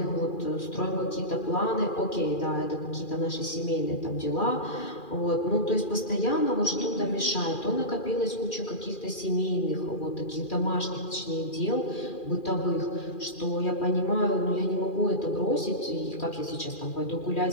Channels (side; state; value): right; late; 2.4 ms